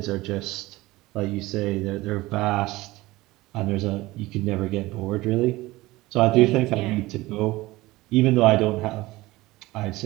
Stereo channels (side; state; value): left; quieter; 19.3 dB